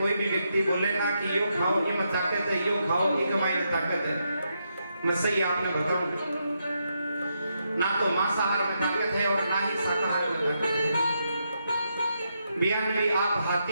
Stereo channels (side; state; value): both; inverted; correlation -0.81